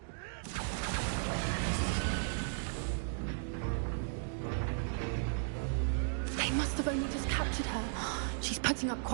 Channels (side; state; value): left; silent; digital silence